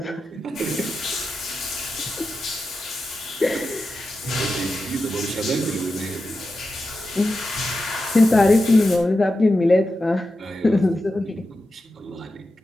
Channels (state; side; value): normal; both; correlation 0.91